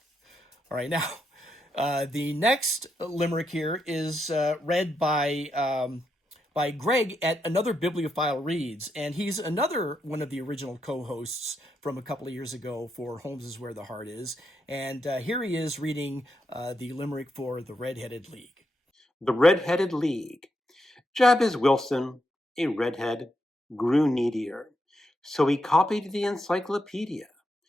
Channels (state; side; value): normal; both; correlation 0.82